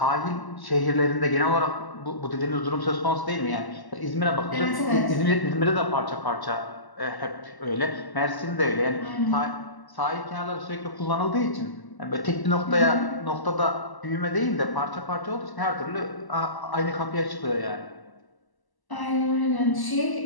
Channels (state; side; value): late; right; 1.0 ms